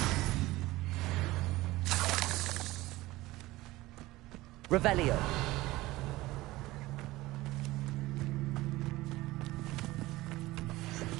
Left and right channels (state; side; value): quieter; left; 18.6 dB